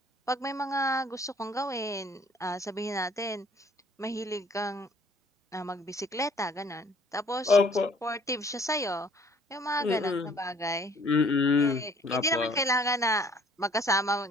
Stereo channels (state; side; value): normal; both; correlation 0.58